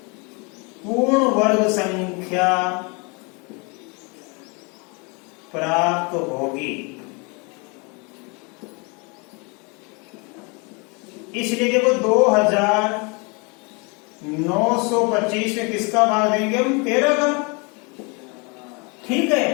पूर्ण वर्ग संख्या प्राप्त होगी। इसलिए देखो 2925 में किसका भाग देंगे हम? 13 का। ठीक है,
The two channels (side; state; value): right; quieter; 30.8 dB